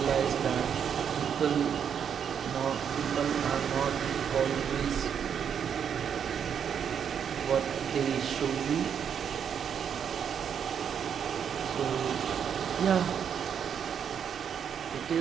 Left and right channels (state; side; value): quieter; left; 7.9 dB